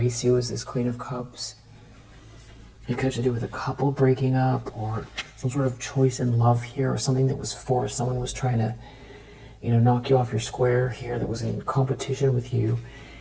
you as this Queen of Cups. It could have to do with a couple breaking up, or some sort of choice in love here, or something that was forced. Someone was trying to, knock you off your square here, that was in competition with you,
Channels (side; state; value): both; identical; correlation 1.00